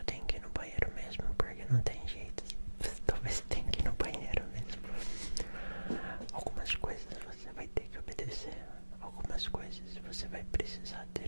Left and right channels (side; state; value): both; inverted; correlation -1.00